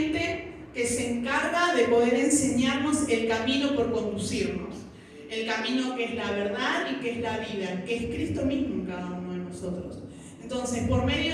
que se encarga de poder enseñarnos el camino por conducirnos, el camino que es la verdad y que es la vida, que es Cristo mismo en cada uno de nosotros. Entonces, por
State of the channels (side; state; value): both; identical; correlation 1.00